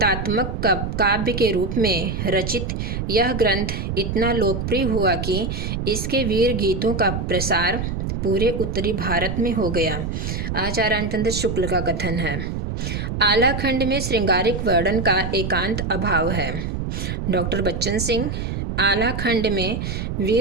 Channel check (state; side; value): noise; right; rumble, 3 dB below the sound